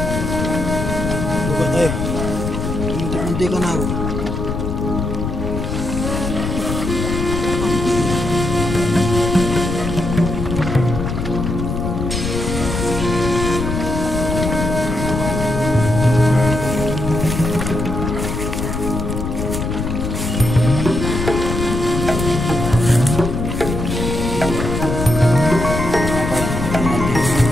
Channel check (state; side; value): noise; left; rumble, 3 dB below the sound